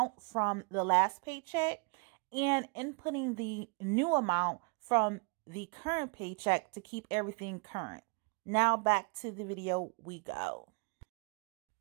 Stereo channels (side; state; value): left; quieter; 33.8 dB